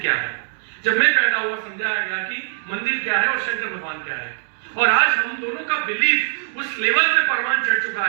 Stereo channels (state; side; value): silent; left; digital silence